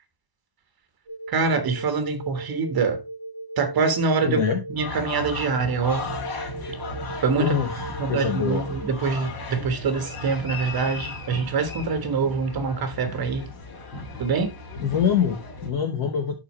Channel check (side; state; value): left; late; 1.0 ms